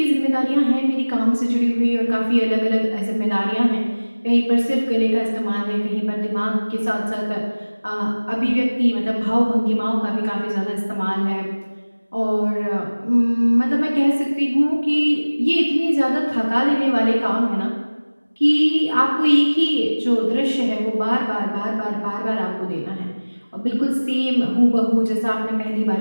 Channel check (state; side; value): inverted; both; correlation -1.00